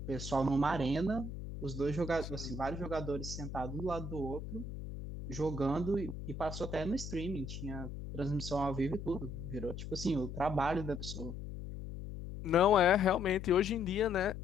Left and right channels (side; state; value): left; noise; hum, 8 dB below the sound